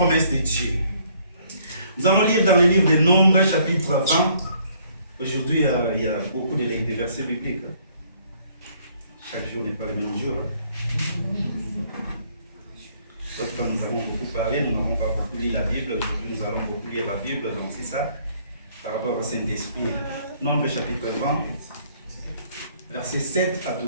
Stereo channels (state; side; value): inverted; both; correlation -0.63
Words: de Dieu. Nous allons lire dans le livre des Nombres, chapitre 20. Aujourd'hui, il y a beaucoup de versets bibliques. Chaque jour n'est pas le même jour. D'autres fois, nous avons beaucoup parlé, nous n'avons pas beaucoup lu la Bible. Aujourd'hui, nous allons beaucoup lire la Bible. Donc, c'est ça, par rapport au Saint-Esprit. Nombres, chapitre 20, versets 7 à